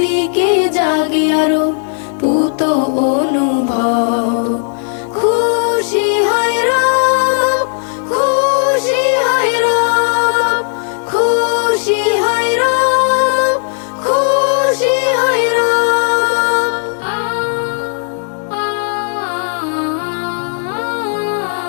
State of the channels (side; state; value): right; silent; digital silence